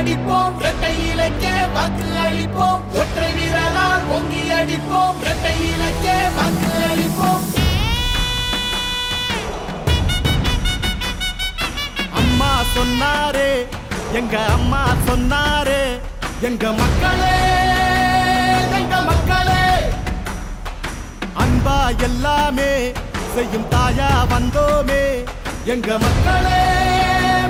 இரட்டை இலக்கே வாக்கு அளிப்போம் ஒற்றை வீரலால் பொங்கி அடிப்போம் இரட்டை இலக்கே வாக்கு அளிப்போம். அம்மா சொன்னாரே எங்க அம்மா சொன்னாரே எங்க மக்களே எங்க மக்களே அன்பா எல்லாமே செய்யும் தாயா வந்தோமே எங்க மக்களே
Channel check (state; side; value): identical; both; correlation 1.00